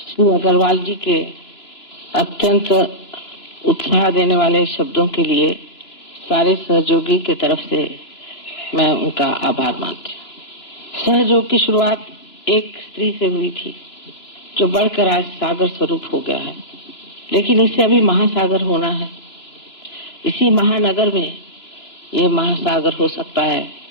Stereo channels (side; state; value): right; late; 2.9 ms